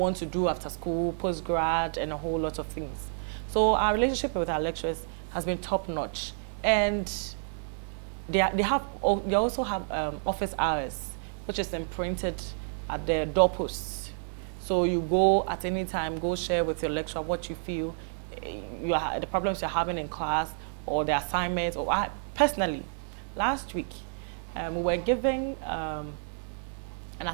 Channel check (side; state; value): left; silent; digital silence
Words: to do after school, post-grad, and a whole lot of things. So our relationship with our lecturers has been top-notch. And they also have office hours, which is imprinted at the doorposts. So you go at any time, go share with your lecturer what you feel, the problems you're having in class, or the assignments, or personally, last week, we were giving an